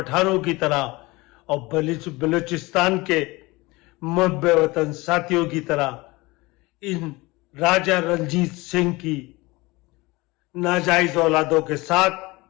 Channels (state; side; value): quieter; right; 22.6 dB